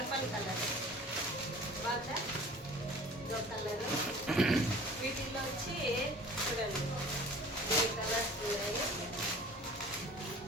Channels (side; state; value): both; normal; correlation 0.45